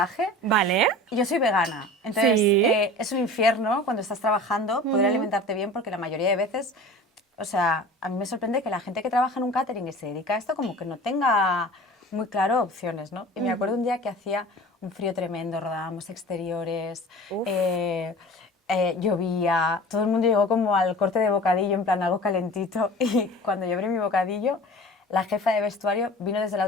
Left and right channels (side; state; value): both; normal; correlation 0.39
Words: Vale. Yo soy vegana, entonces Sí. Es un infierno cuando estás trabajando poder alimentarte bien, porque la mayoría de veces, o sea, a mí me sorprende que la gente que trabaja en un catering y se dedica a esto como que no tenga muy claro opciones, ¿no? Y me acuerdo un día que hacía un frío tremendo, rodábamos exteriores, llovía, todo el mundo llegó como al corte de bocadillo, en plan algo calentito, y cuando yo abrí mi bocadillo, la jefa de vestuario vino desde la